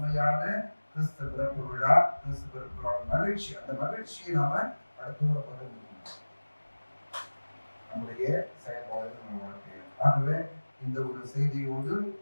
கிறிஸ்து பிறப்பு விழா, கிறிஸ்து பிறப்பு விழா மகிழ்ச்சி. அந்த மகிழ்ச்சியை நாம அடுத்தவரை பகிர்ந்து நம்முடைய செயல்பாடுகள் நம்ம வாழ்க்கையில். ஆகவே இந்த ஒரு செய்தியோடு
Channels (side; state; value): both; inverted; correlation -1.00